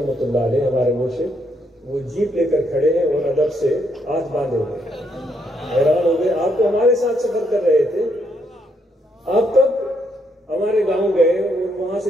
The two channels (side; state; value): both; normal; correlation 0.75